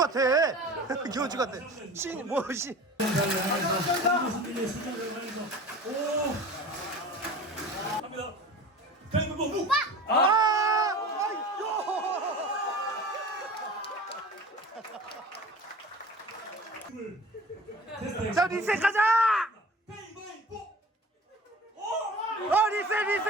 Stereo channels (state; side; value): normal; both; correlation 0.39